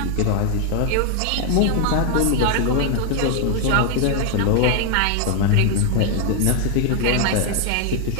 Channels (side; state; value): both; different; correlation 0.01